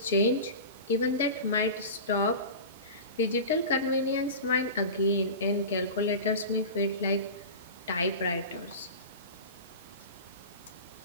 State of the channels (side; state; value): both; inverted; correlation -0.30